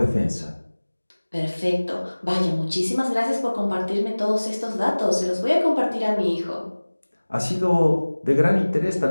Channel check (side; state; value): both; inverted; correlation -1.00